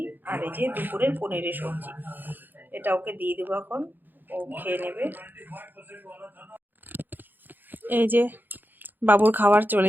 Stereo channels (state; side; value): late; left; 0.090 ms